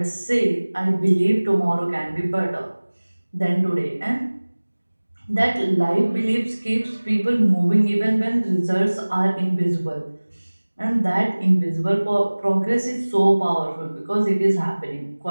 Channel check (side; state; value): both; inverted; correlation -1.00